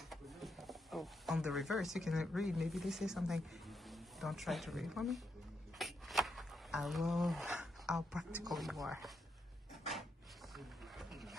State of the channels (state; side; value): normal; both; correlation 0.81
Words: Oh. On the reverse, you can read. Maybe they say something. Don't try to read for me. I love how practical you are.